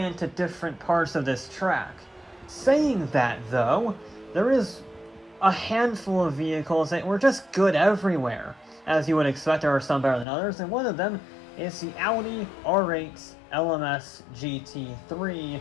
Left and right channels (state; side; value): drops out; right; at 10.2 s